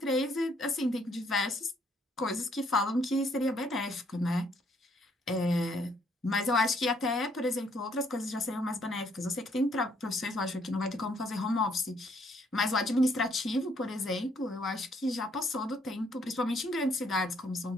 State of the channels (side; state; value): both; normal; correlation 0.68